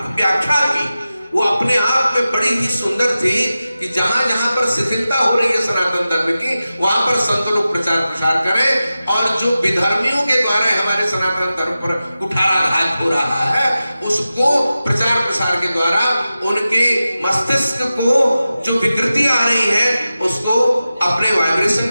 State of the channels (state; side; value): inverted; both; correlation -0.94